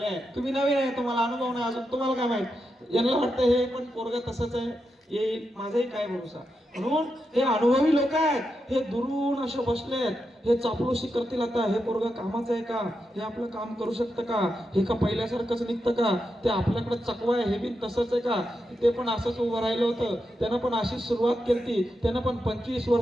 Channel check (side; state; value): both; normal; correlation 0.86